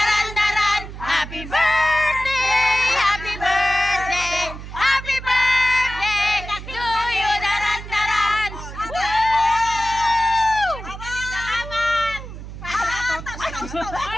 Happy birthday, happy birthday, happy birthday to you, daran-daran.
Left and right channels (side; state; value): right; noise; hum, 11 dB below the sound